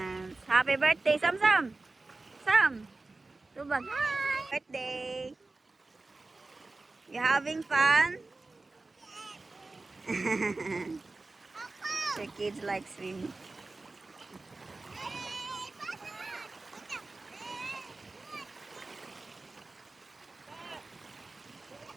Happy birthday, Sam Sam. Sam. Tubag. Hi. Birthday. You having fun? The kids like swimming.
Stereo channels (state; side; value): quieter; left; 3.4 dB